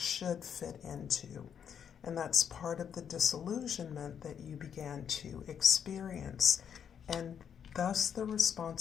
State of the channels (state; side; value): quieter; right; 8.0 dB